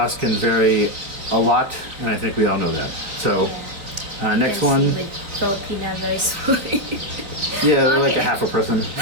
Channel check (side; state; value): left; late; 3.7 ms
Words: can vary a lot, and I think we all know that. So next Yes, one, with Filipina very sweet. yeah, they're like a Okay. half a person